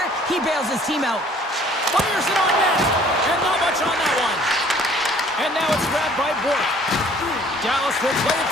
he bails his team out. Fires it on net, and not much on that one. And now it's grabbed by Bork. Dallas will play it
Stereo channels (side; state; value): both; normal; correlation 0.56